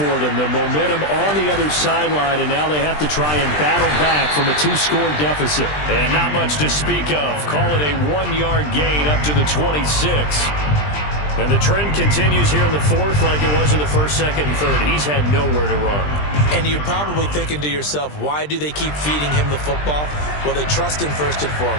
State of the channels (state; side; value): late; right; 20 ms